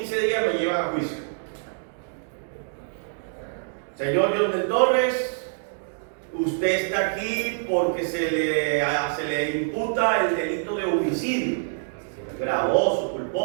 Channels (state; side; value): silent; left; digital silence